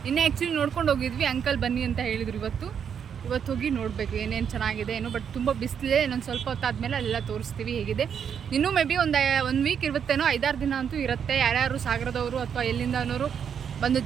ನಿನ್ನೆ ಆ್ಯಕ್ಚುಲಿ ನೋಡ್ಕೊಂಡು ಹೋಗಿದ್ವಿ, ಅಂಕಲ್ ಬನ್ನಿ ಅಂತ ಹೇಳಿದ್ರು. ಇವತ್ತು ಹೋಗಿ ನೋಡಬೇಕು ಏನೇನು ಚೆನ್ನಾಗಿದೆ ಏನೋ. ಬಟ್ ತುಂಬ ಬಿಸಿಲಿದೆ, ಇನ್ನೊಂದು ಸ್ವಲ್ಪ ಹೊತ್ತಾದ್ಮೇಲೆ ಅಲ್ಲೆಲ್ಲ ತೋರಿಸ್ತೀವಿ ಹೇಗಿದೆ. ಇನ್ನೂ ಮೇ ಬಿ ಒಂದು ವೀಕ್ ಇರುತ್ತೇನೋ, 5-6 ದಿನ ಅಂತೂ ಇರುತ್ತೆ. ಯಾರ್ಯಾರು ಸಾಗರದವರು ಅಥವಾ ಎಲ್ಲಿಂದನವರು ಬಂದು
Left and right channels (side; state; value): left; quieter; 7.7 dB